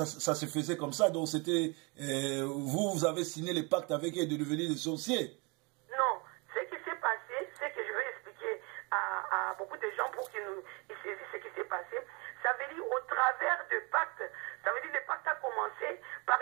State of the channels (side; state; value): left; quieter; 30.0 dB